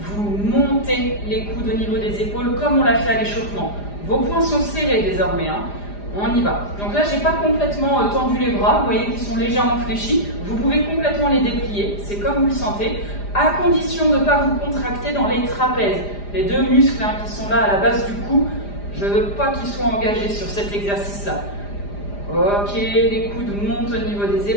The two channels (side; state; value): right; late; 4.9 ms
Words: montez les coudes au niveau des épaules comme on l'a fait à l'échauffement. Vos poings sont serrés désormais, hein. On y va. Donc là, je n'ai pas complètement tendu les bras, vous voyez qu'ils sont légèrement fléchis. Vous pouvez complètement les déplier, c'est comme vous le sentez, à condition de ne pas vous contracter dans les trapèzes. Les deux muscles hein, qui sont là à la base du cou, je ne veux pas qu'ils soient engagés sur cet exercice-là. Ok, les coudes montent au niveau des